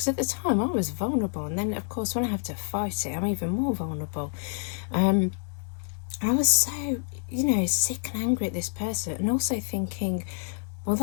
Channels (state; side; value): silent; right; digital silence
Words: at the time I was vulnerable, and then of course when I have to fight it, I'm even more vulnerable. I was so, you know, sick and angry at this person, and also thinking, well,